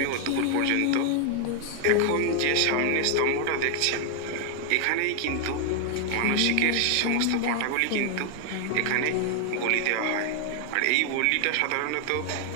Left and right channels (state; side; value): different; both; correlation 0.00